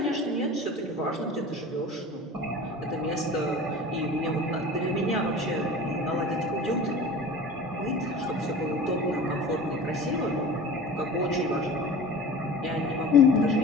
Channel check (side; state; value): both; normal; correlation 0.37